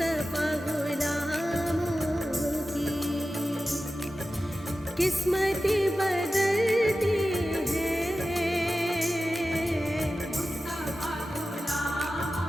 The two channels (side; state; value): both; normal; correlation 0.94